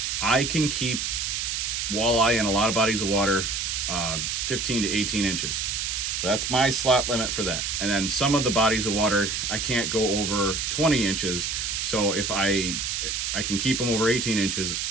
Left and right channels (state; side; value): noise; right; hiss, 1 dB below the sound